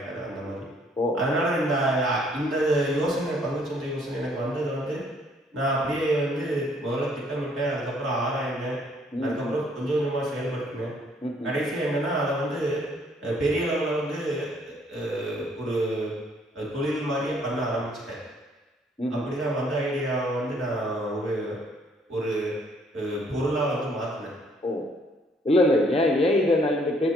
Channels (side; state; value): both; normal; correlation 0.64